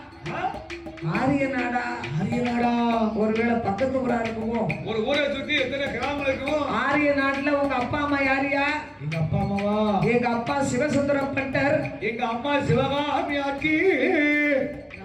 ஆரிய நாடா? ஆரிய நாடா? ஒருவேளை பக்கத்து ஊரா இருக்குமோ? ஒரு ஊரை சுத்தி எத்தனை கிராமம் இருக்கும்? ஆரிய நாட்டுல உங்க அப்பா அம்மா யாரியா? எங்க அப்பா அம்மாவா? எங்க அப்பா சிவசுந்தரம் பட்டர். எங்க அம்மா சிவகாமி ஆக்கி.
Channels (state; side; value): identical; both; correlation 1.00